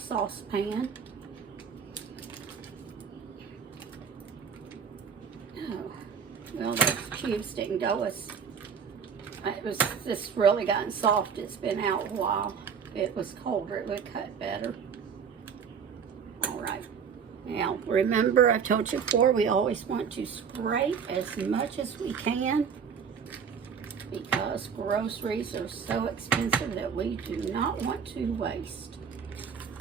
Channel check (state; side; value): quieter; left; 6.8 dB